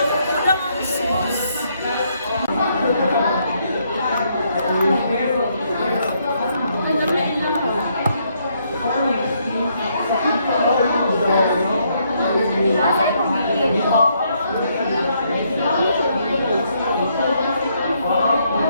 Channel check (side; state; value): both; inverted; correlation -0.73